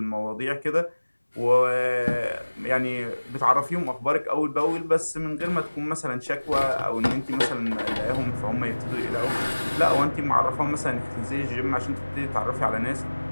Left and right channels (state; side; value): inverted; both; correlation -1.00